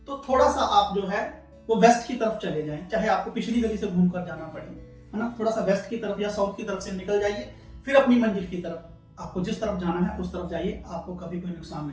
तो थोड़ा सा आप जो है वो वेस्ट की तरफ चले जाएं, चाहे आपको पिछली गली से घूमकर जाना पड़े, है ना। थोड़ा सा वेस्ट की तरफ या साउथ की तरफ से निकल जाइए, फिर अपनी मंजिल की तरफ, आपको जिस तरफ जाना है उस तरफ जाइए, आपको कभी कोई नुकसान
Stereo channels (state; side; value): identical; both; correlation 1.00